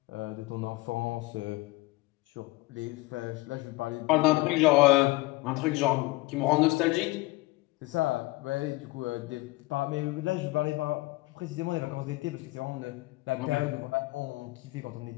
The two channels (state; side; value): quieter; right; 21.7 dB